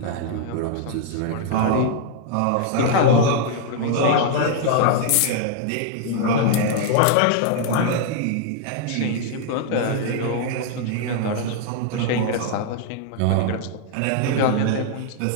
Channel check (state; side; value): different; both; correlation -0.01